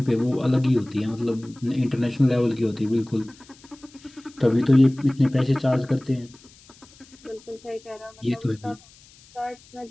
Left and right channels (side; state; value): left; noise; hiss, 26 dB below the sound